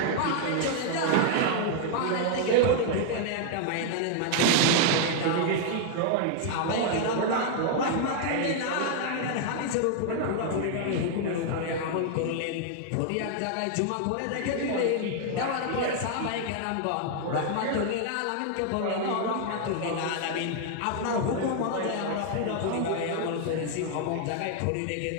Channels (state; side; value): different; both; correlation 0.00